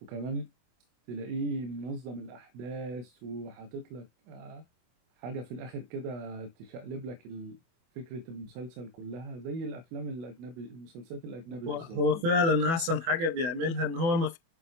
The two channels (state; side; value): late; left; 24 ms